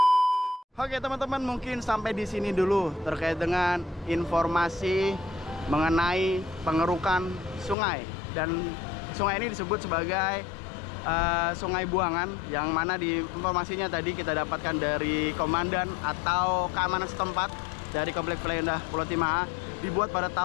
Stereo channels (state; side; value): drops out; right; at 7.8 s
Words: Oke teman-teman, mungkin sampai di sini dulu terkait dengan informasi mengenai pengerukan sungai, dan sungai ini disebut sebagai Sungai Buangan, yang mana di informasinya tadi kita dapatkan dari komandan atau keamanan setempat dari komplek Indah Pulau Timah, dibuat pada